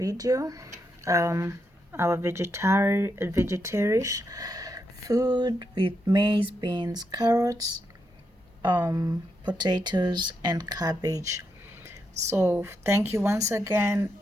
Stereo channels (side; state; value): both; normal; correlation 0.82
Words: Our vegetarian food with maize, beans, carrots, potatoes, and cabbage. So thank you once again,